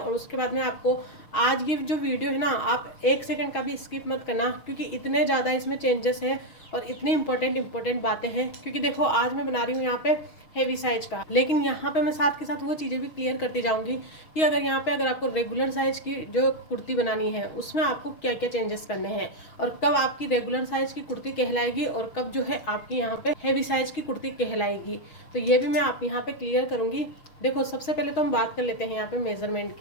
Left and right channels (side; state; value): right; late; 6.3 ms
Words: उसके बाद में आपको आज ये जो वीडियो है ना, आप 1 सेकंड का भी स्किप मत करना, क्योंकि इतने ज़्यादा इसमें चेंजेस हैं और इतनी इंपॉर्टेंट बातें हैं। क्योंकि देखो आज मैं बना रही हूँ यहाँ पे हेवी साइज का, लेकिन यहाँ पे मैं साथ के साथ वो चीज़ें भी क्लियर करती जाऊंगी कि अगर आपको रेगुलर साइज की जो कुर्ती बनानी है उसमें आपको क्या क्या चेंजेस करने हैं, और कब आपकी रेगुलर साइज की कुर्ती कहलाएगी और कब जो है आपकी यहाँ पे हेवी साइज की कुर्ती कहलाएगी। तो ये भी मैं आप यहाँ पे क्लियर करूंगी। देखो सबसे पहले तो हम बात कर लेते हैं यहाँ पे मेजरमेंट